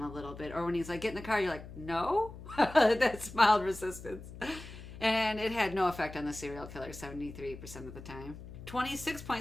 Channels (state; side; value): noise; left; hum, 13 dB below the sound